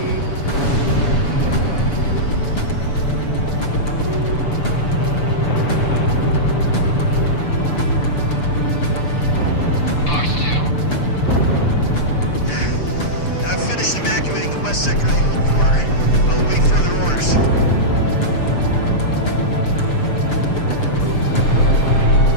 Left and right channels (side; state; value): right; late; 6.8 ms